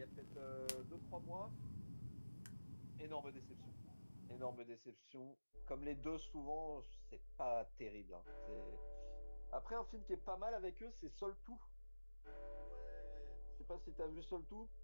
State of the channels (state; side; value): inverted; both; correlation -1.00